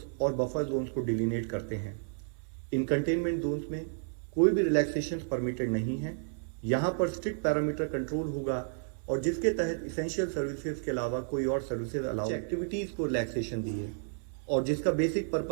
और बफर जोन्स को डिलिनेट करते हैं। इन कंटेनमेंट जोन्स में कोई भी रिलैक्सेशन परमिटेड नहीं है। यहाँ पर स्ट्रिक्ट पैरामीटर कंट्रोल होगा और जिसके तहत इसेंशियल सर्विसेज के अलावा कोई और सर्विसेज अलाउ एक्टिविटीज को रिलैक्सेशन दी है और जिसका बेसिक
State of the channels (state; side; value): silent; left; digital silence